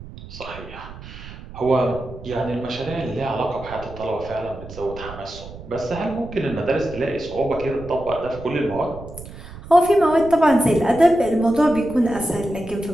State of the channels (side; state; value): right; noise; rumble, 15 dB below the sound